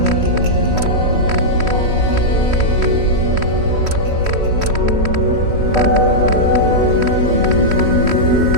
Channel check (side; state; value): left; late; 3.1 ms